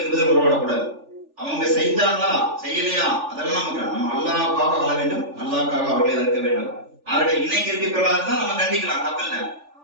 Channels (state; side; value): late; left; 3.4 ms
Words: பதில் உறவாடக்கூடாது. அவங்க செய்தாங்களா செய்யலையா அதெல்லாம் நமக்கு நம்ம அல்லாஹ்வுக்காக வாழ வேண்டும், அல்லாஹ்வுக்காக அவர்களை இருக்க வேண்டும். அவர்களை இணைக்க இருக்கக்கூடாதுதான் நம்ம கண்டிக்கலாம், தப்பில்லை.